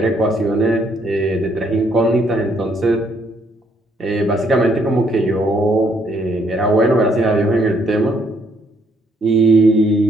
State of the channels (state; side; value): normal; both; correlation 0.69